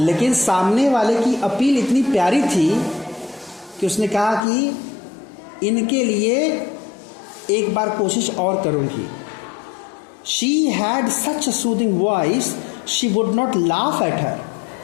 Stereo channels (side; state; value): right; drops out; at 4.5 s